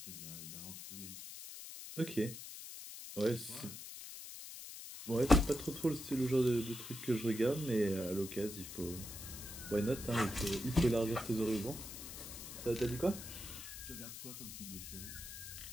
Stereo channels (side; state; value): left; noise; hiss, 10 dB below the sound